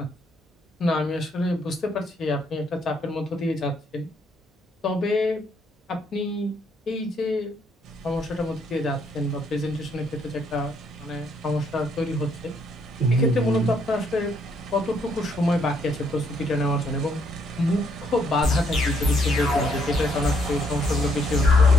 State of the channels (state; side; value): normal; both; correlation 0.71